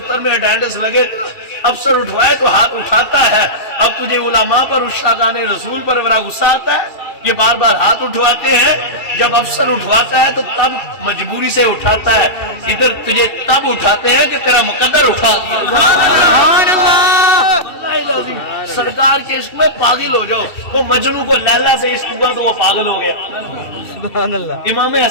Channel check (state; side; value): late; right; 2.7 ms